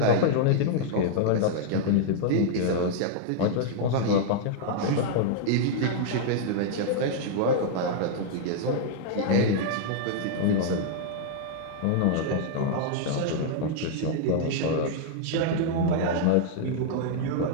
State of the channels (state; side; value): different; both; correlation -0.01